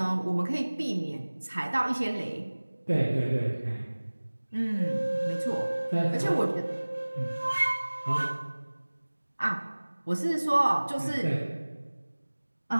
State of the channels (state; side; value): inverted; both; correlation -1.00